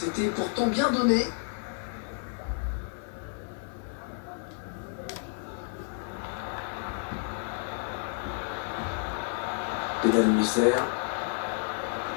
pourtant bien donné. Pédale Musser.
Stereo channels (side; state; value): right; silent; 57 dB below the other